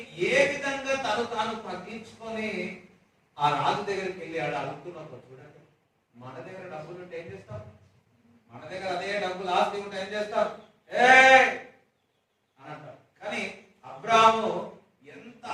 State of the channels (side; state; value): both; identical; correlation 1.00